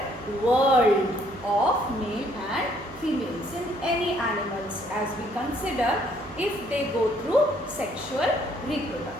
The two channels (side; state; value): right; noise; hum, 19 dB below the sound